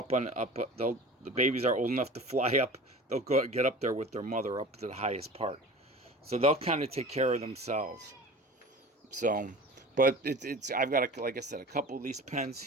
the babies are old enough to fly up, they'll get up there with their mother up to the highest part. So they'll kind of take care of themselves. So. But I've got, like I said, a couple of these pens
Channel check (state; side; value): normal; both; correlation 0.38